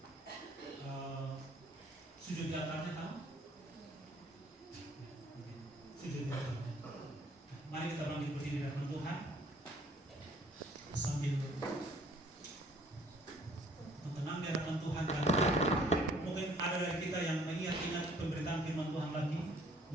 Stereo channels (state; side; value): normal; both; correlation 0.59